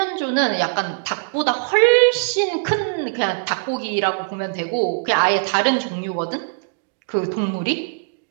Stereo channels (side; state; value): left; silent; digital silence